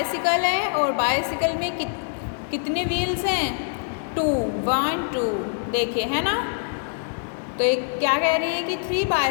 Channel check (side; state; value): right; silent; digital silence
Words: है और बाइसिकल में कितने व्हील्स हैं? 2, 1, 2। देखिए, है ना। तो एक क्या कह रहे हैं कि 3